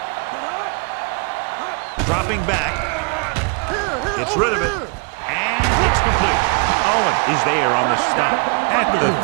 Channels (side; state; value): left; quieter; 34.3 dB